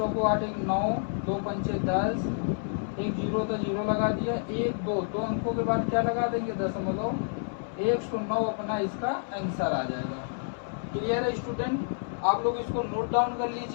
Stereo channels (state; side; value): silent; right; 59 dB below the other